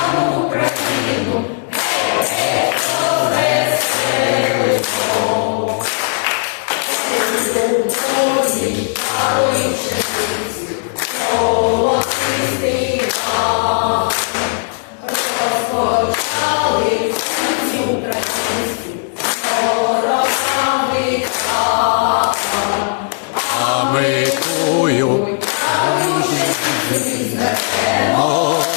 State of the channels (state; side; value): silent; right; 68 dB below the other